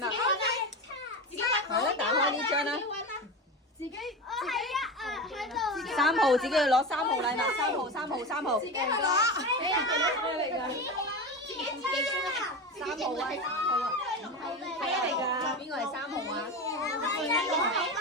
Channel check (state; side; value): normal; both; correlation 0.24